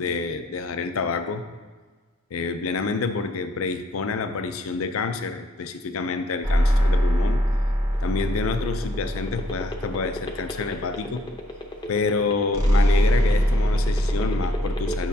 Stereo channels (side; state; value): both; normal; correlation 0.65